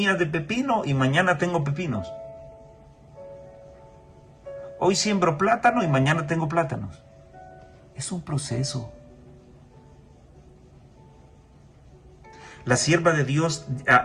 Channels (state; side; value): identical; both; correlation 1.00